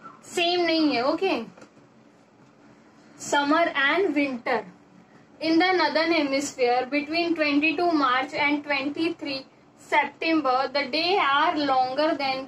सेम नहीं है. Okay, summer and winter. In the northern hemisphere between 22 March and 23 September the day are longer than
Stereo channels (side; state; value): both; identical; correlation 1.00